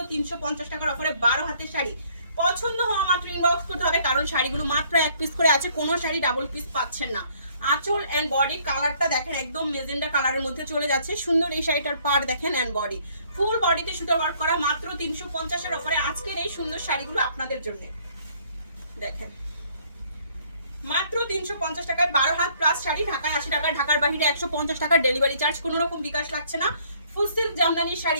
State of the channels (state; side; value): inverted; both; correlation -0.62